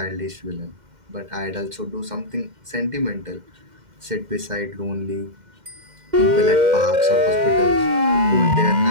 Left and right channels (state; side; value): late; left; 2.1 ms